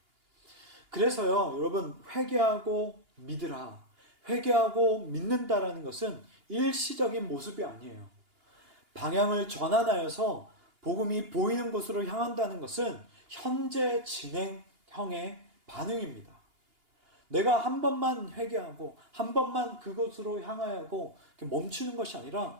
그래서요, 여러분, 회개하고 믿으라. 회개하고 믿는다라는 것은 일시적인 모습이 아니에요. 방향을 전환하여서 복음이 보이는 곳으로 향한다는 것은 현재 진행형의 반응입니다. 내가 한 번만 회개하고 한 번만 그곳으로 향하고 멈추는 것이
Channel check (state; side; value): late; left; 2.8 ms